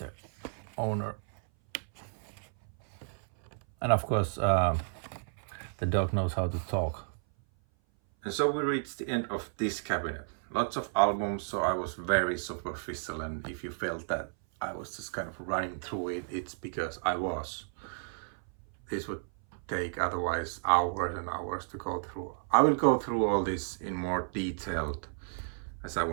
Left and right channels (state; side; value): silent; left; 56 dB below the other